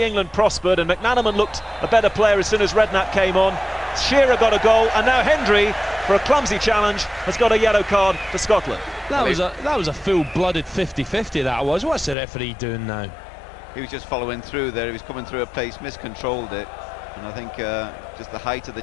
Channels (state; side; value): drops out; right; at 12.2 s